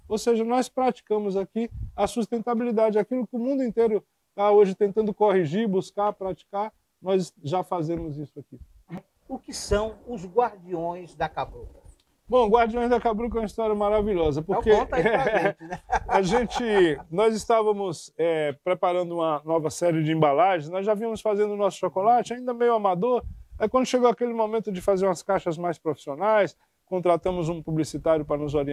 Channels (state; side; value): identical; both; correlation 1.00